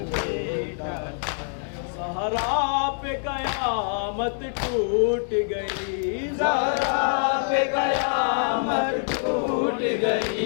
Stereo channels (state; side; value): silent; right; digital silence